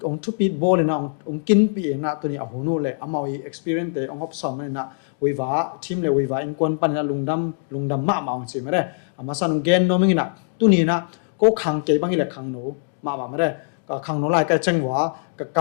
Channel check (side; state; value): right; silent; digital silence